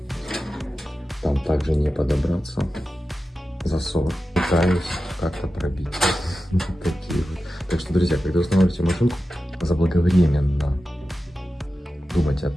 Там также не подобраться. Засов. Пытаюсь как-то пробить. Такие вот. Так что, друзья, когда устанавливаете машинку, заблаговременно думать о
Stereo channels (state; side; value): normal; both; correlation 0.93